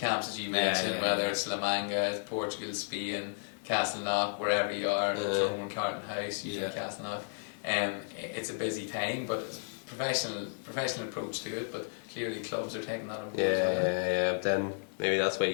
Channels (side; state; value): right; silent; 56 dB below the other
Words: as you mentioned, yeah. whether it's La Manga, Portugal, Spain, Castleknock, wherever you are, Tyrone, Carton House, usually Yeah. Castleknock. It's a busy time, but it's a professional approach to it, but clearly clubs are taking that on board as well. Yeah. But then maybe that's